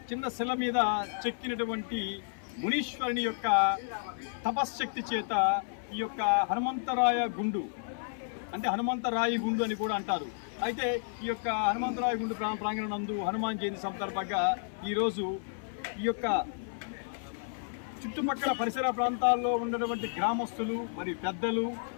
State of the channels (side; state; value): right; silent; 57 dB below the other